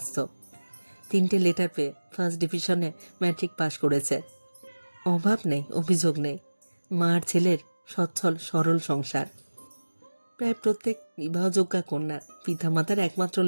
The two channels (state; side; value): inverted; both; correlation -1.00